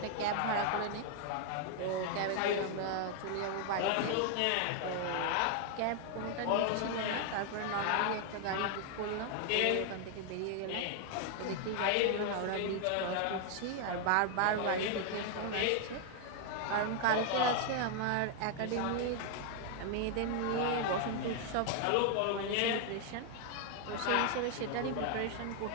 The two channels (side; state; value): both; different; correlation 0.00